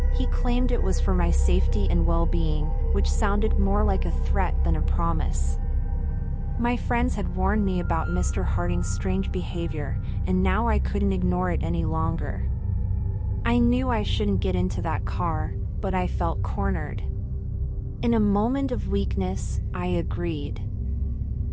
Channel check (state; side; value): identical; both; correlation 1.00